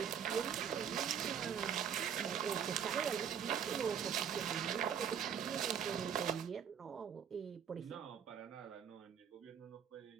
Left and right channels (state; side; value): quieter; left; 8.2 dB